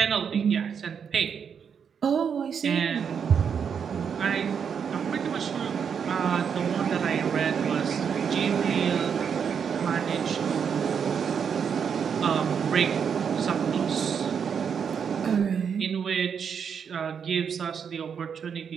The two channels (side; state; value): left; quieter; 7.1 dB